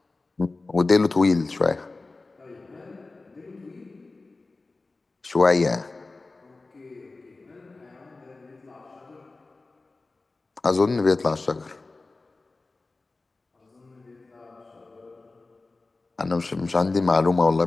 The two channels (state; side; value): quieter; right; 3.5 dB